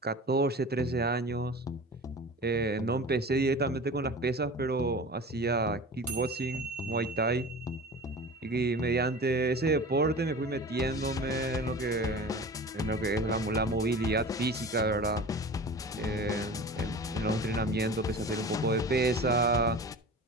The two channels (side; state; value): both; normal; correlation 0.36